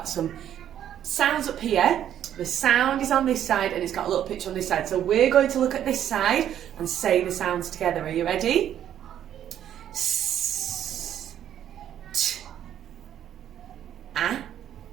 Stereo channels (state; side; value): quieter; left; 10.5 dB